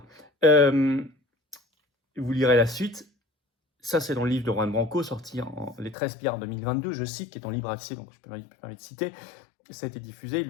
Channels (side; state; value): right; drops out; at 6.0 s